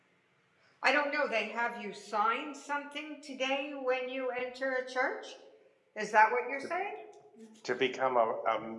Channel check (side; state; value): both; identical; correlation 1.00